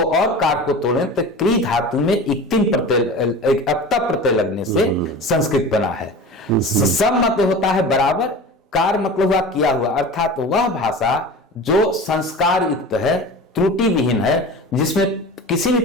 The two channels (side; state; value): both; normal; correlation 0.34